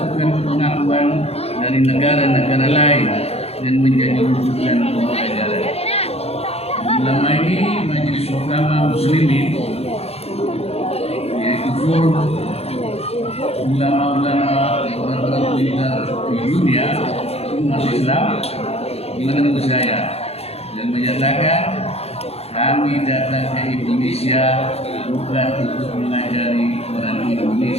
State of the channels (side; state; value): right; late; 0.29 ms